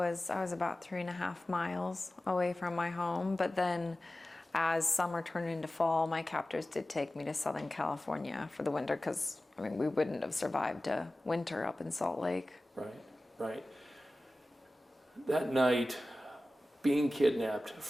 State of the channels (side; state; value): both; normal; correlation 0.96